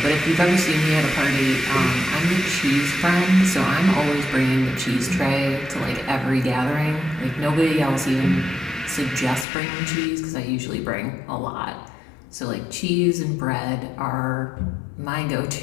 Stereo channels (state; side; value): drops out; right; at 9.5 s